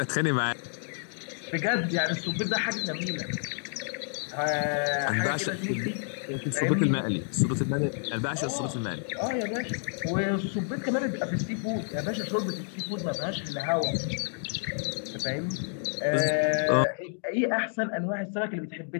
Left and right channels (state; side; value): silent; right; 58 dB below the other